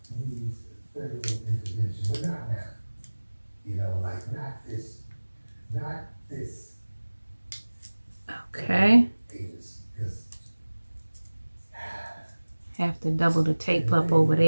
needs federal intervention, but not now. Not this. Okay. Because Have to double the tape up over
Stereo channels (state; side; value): inverted; both; correlation -1.00